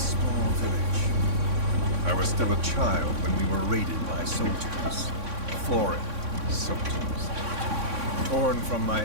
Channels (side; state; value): left; late; 3.6 ms